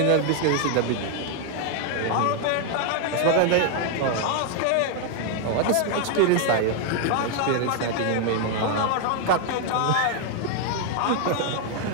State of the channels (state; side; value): different; both; correlation 0.00